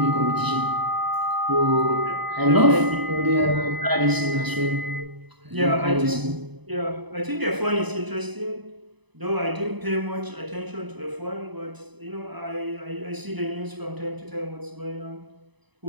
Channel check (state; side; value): late; left; 1.0 ms